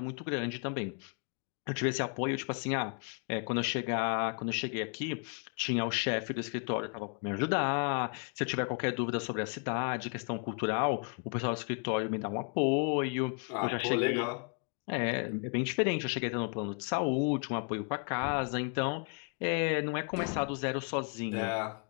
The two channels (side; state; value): right; quieter; 39.6 dB